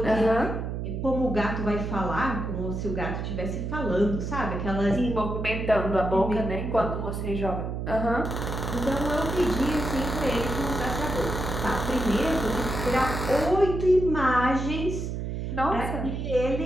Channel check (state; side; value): noise; right; hum, 4 dB below the sound